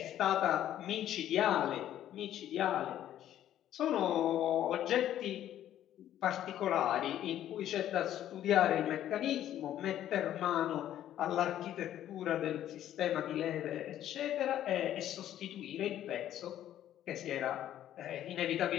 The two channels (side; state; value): right; quieter; 11.8 dB